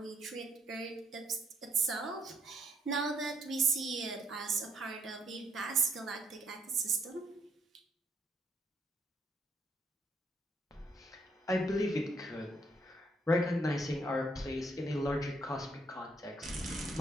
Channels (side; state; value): both; normal; correlation 0.70